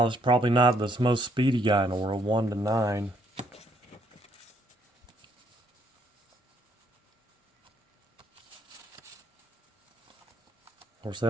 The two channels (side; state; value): both; normal; correlation 0.70